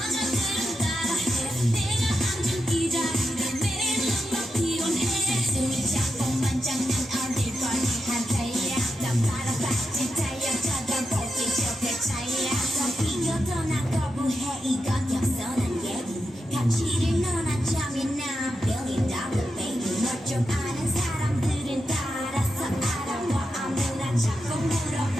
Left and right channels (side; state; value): both; normal; correlation 0.88